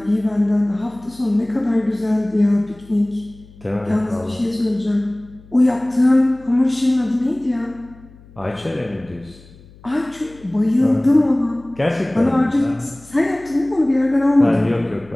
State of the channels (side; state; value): left; noise; hum, 24 dB below the sound